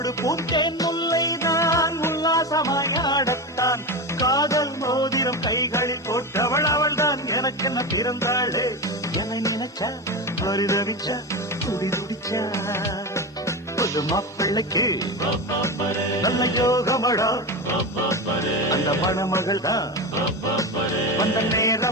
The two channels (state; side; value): normal; both; correlation 0.20